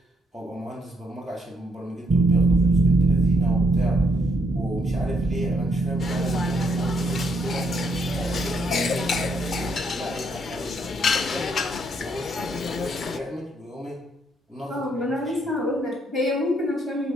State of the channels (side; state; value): both; normal; correlation 0.73